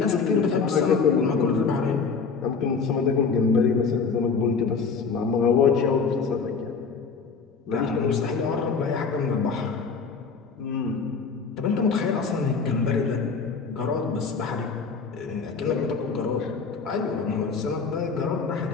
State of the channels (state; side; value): quieter; right; 5.1 dB